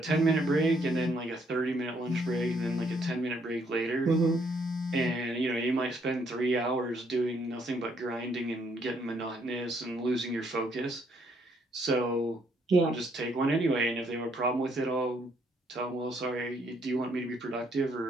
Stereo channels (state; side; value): normal; both; correlation 0.70